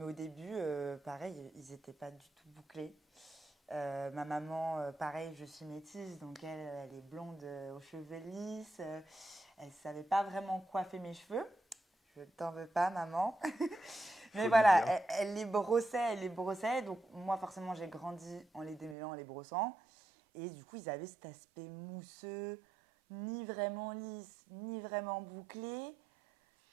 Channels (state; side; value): drops out; left; at 18.9 s